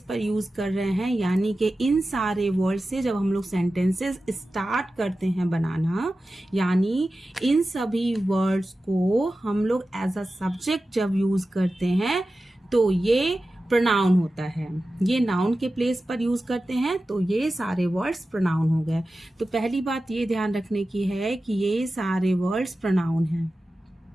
पर यूज कर रहे हैं, यानी कि इन सारे वर्ड्स से जब हम लोग सेंटेंसेस स्टार्ट करते हैं बनाना, यानी इन सभी वर्ड्स को हम लोग एज अ सब्जेक्ट जब यूज करते हैं तो ये प्रोनाउन होता है. ये नाउन के प्लेस पर यूज करते हैं तो ये सारे वर्ड्स प्रोनाउन हो गए. तो पहली बात ये ध्यान रखने की है कि ये सारे वर्ड्स प्रोनाउन हैं.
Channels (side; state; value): both; normal; correlation 0.94